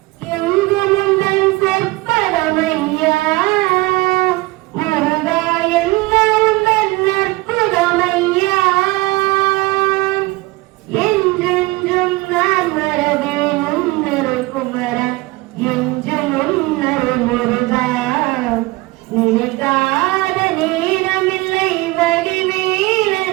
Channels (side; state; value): left; quieter; 21.5 dB